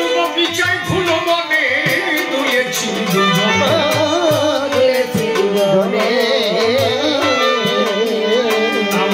বগিচায় ফুল বনে দুলেছি দুজনে,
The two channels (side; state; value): both; identical; correlation 1.00